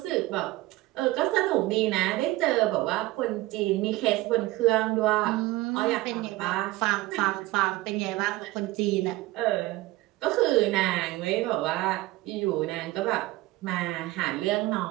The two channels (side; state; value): left; quieter; 18.7 dB